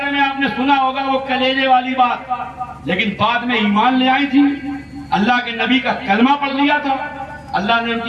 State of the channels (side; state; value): both; identical; correlation 1.00